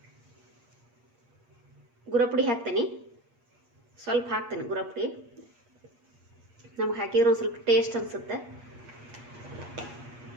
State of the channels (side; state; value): left; late; 8.5 ms